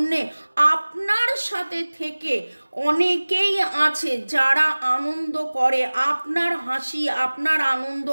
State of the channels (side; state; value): both; inverted; correlation -1.00